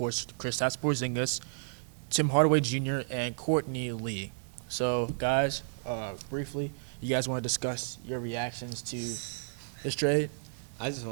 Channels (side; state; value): left; silent; digital silence